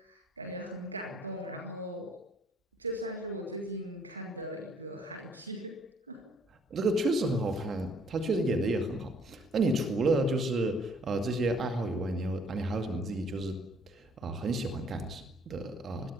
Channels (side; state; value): both; normal; correlation 0.62